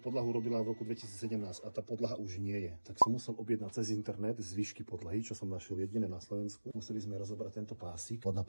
robila v roku 2017 a tá podlaha už nie je. Tak som musel objednať cez internet zvyšky podlahy, čo som našiel jediné na Slovensku. Museli sme rozobrať tento pásik. Spodná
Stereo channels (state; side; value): inverted; both; correlation -1.00